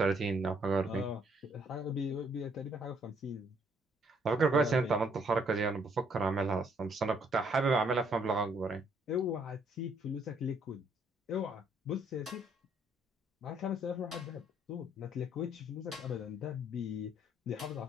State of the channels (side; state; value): both; normal; correlation 0.67